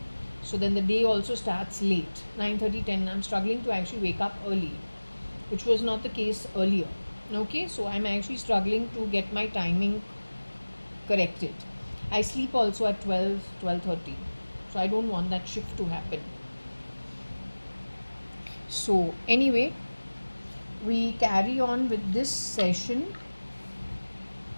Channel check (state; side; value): inverted; both; correlation -1.00